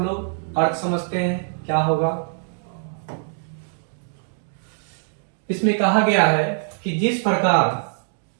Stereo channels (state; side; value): silent; left; digital silence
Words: लोग अर्थ समझते हैं क्या होगा। इसमें कहा गया है कि जिस प्रकार